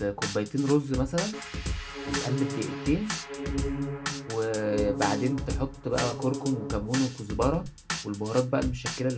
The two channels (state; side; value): identical; both; correlation 1.00